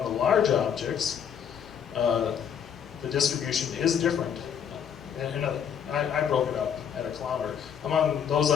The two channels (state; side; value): quieter; right; 8.1 dB